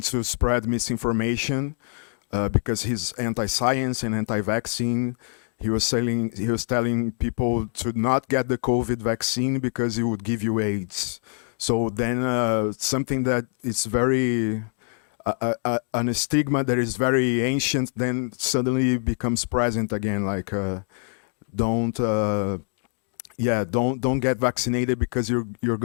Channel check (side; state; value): right; silent; 62 dB below the other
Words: to spread misinformation because he's anti-science and anti-vaccine. He was telling people to not get the COVID vaccine because it would give you AIDS. So then something that is very an stigma that is very ancient then suddenly becomes present again. Like don't get vaccinated because you're